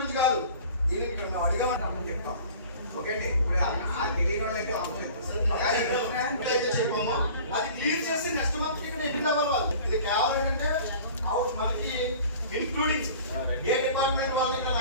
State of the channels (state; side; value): inverted; both; correlation -0.44